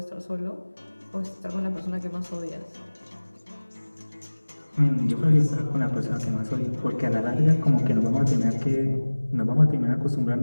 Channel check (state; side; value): inverted; both; correlation -1.00